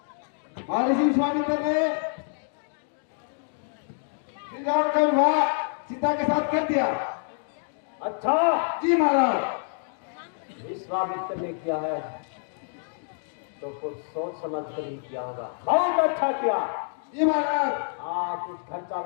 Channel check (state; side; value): silent; right; 60 dB below the other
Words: महर्षि विश्वामित्र ने श्री राम का विवाह सीता के साथ कर दिया। अच्छा। जी महाराज। विश्वामित्र ने किया है तो कुछ सोच समझ कर ही किया होगा। बहुत अच्छा किया। जी महाराज। हाँ कुछ खर्चा